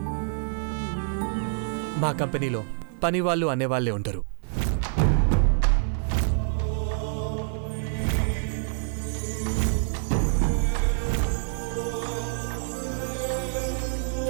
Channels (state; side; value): silent; left; 56 dB below the other